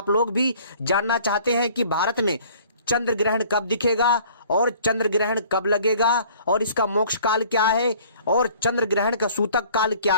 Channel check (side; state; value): both; inverted; correlation -0.53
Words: लोग भी जानना चाहते हैं कि भारत में चंद्र ग्रहण कब दिखेगा और चंद्र ग्रहण कब लगेगा और इसका मोक्ष काल क्या है और चंद्र ग्रहण का सूतक काल क्या